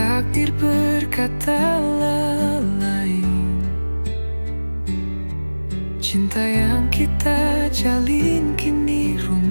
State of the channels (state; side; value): inverted; both; correlation -1.00